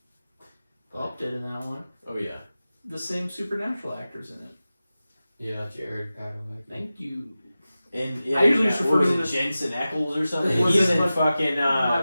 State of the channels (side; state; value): both; inverted; correlation -0.95